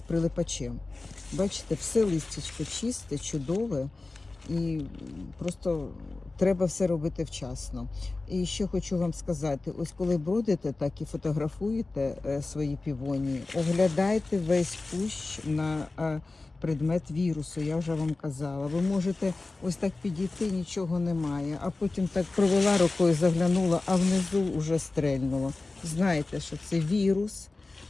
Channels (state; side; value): quieter; right; 3.4 dB